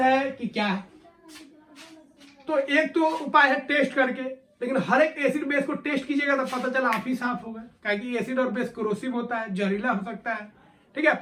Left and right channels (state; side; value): identical; both; correlation 1.00